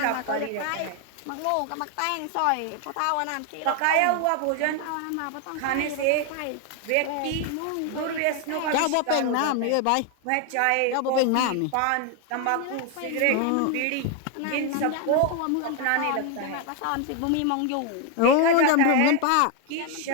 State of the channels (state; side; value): different; both; correlation 0.01